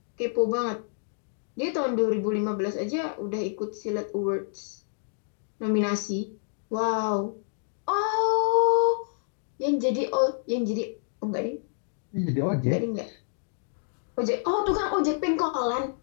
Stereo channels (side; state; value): right; silent; digital silence